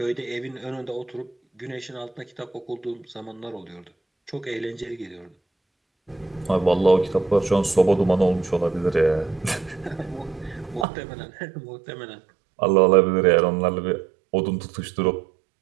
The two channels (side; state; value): left; drops out; at 10.9 s